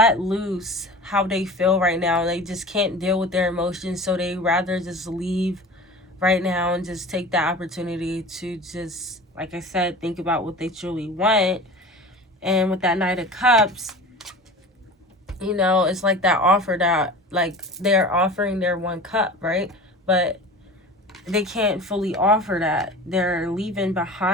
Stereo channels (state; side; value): normal; both; correlation 0.36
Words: loose how they feel right now. They just can't deal with their emotions, so they rather just leave right now and just take the opportunity to just, like I said, think about what they truly want. And with that Knight of Cups, you know, it's like that offer that, like, they're offering their one cup, right? But they can't fully offer that. They're leaving